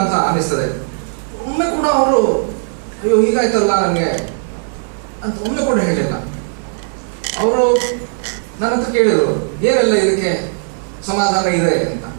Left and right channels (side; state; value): left; silent; digital silence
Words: ಅನಿಸ್ತದೆ. ಒಮ್ಮೆ ಕೂಡ ಅವರು ಅಯ್ಯೋ ಹೀಗಾಯ್ತಲ್ಲ ನನಗೆ ಅಂತ ಒಮ್ಮೆ ಕೂಡ ಹೇಳಿಲ್ಲ. ಅವರು ನನ್ನ ಹತ್ರ ಕೇಳಿದ್ರು ಏನೆಲ್ಲ ಇದಕ್ಕೆ ಸಮಾಧಾನ ಇದೆ ಅಂತ.